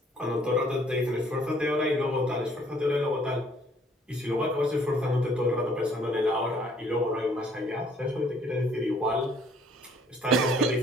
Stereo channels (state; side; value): normal; both; correlation 0.61